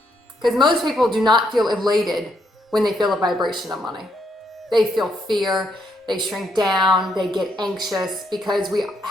Because most people do not feel elated when they feel a vibration of money. They feel fear, they shrink down, they get anxious, because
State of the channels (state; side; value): normal; both; correlation 0.75